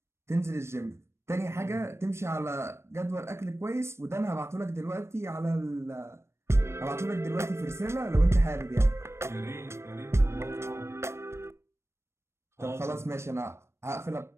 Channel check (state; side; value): late; left; 0.13 ms